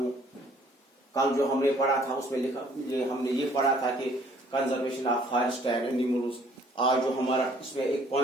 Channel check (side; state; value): both; normal; correlation 0.59